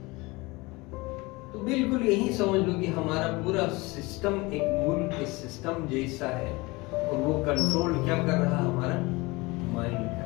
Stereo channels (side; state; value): right; quieter; 23.6 dB